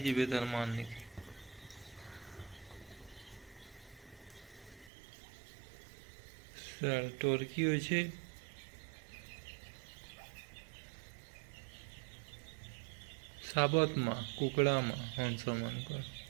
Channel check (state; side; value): drops out; left; at 4.9 s